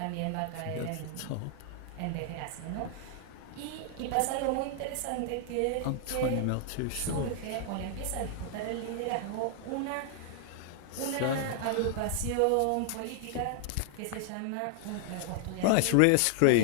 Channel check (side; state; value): both; different; correlation 0.00